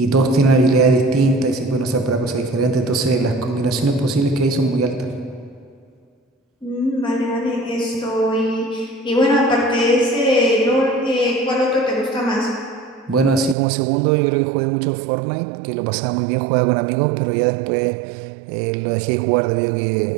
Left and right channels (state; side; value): drops out; left; at 13.6 s